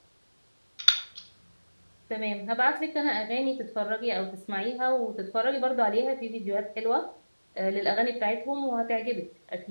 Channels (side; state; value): both; inverted; correlation -1.00